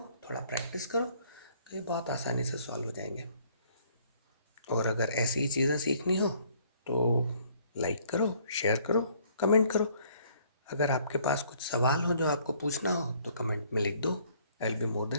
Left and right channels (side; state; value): both; inverted; correlation -0.62